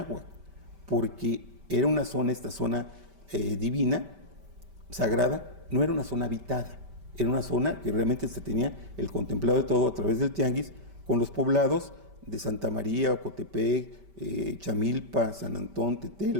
porque era una zona, esta zona divina, sagrada, no era una zona habitada, era una zona que realmente se tenía el contemplado de todo a través del tianguis, con los poblados de Santa María, Ocotepec, Chamilpa, San Antón,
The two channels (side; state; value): left; late; 5.1 ms